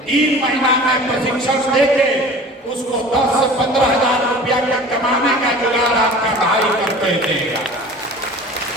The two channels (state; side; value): normal; both; correlation 0.41